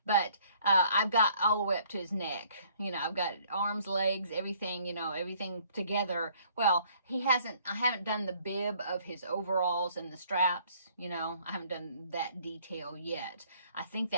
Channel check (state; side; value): inverted; both; correlation -0.60